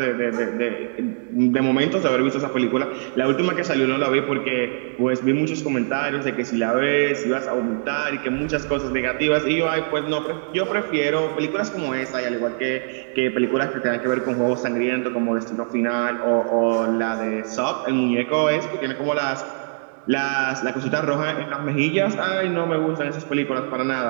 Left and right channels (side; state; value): left; silent; digital silence